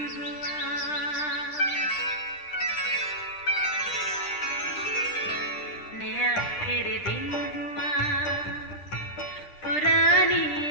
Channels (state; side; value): late; right; 10 ms